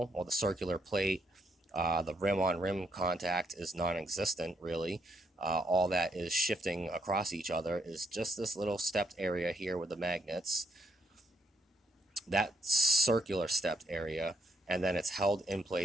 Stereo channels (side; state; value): both; normal; correlation 0.74